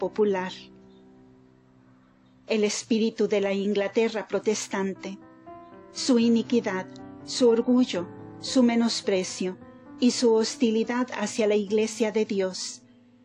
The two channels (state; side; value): identical; both; correlation 1.00